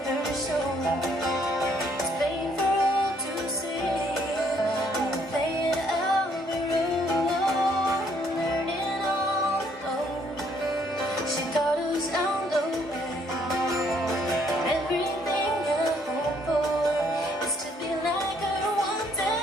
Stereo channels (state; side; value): normal; both; correlation 0.67